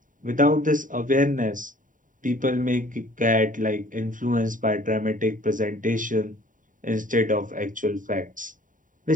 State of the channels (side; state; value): left; late; 0.38 ms